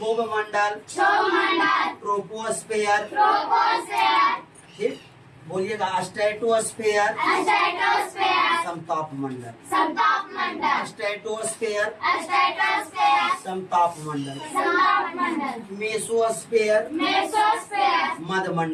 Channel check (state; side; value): identical; both; correlation 1.00